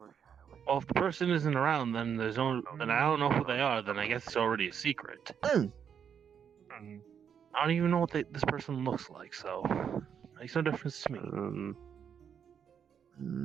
Well, if the person isn't around, then there's no. Then I don't know who they are. Then I guess it's already a secret. I don't even know what this person looks like, so makes no difference to me.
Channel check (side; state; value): left; quieter; 7.8 dB